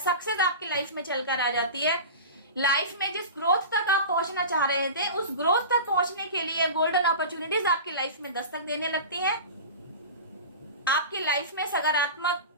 आपकी लाइफ में चलकर आ जाती है। लाइफ में जिस ग्रोथ तक आप पहुंचना चाह रहे थे, उस ग्रोथ तक पहुंचने के लिए गोल्डन अपॉर्चुनिटीज आपकी लाइफ में दस्तक देने लगती हैं। आपकी लाइफ में सकारात्मक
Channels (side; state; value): both; inverted; correlation -0.32